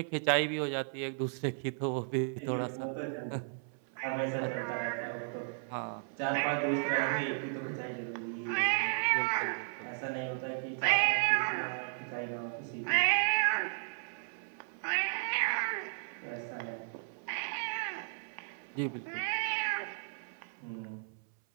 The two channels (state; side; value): silent; left; 55 dB below the other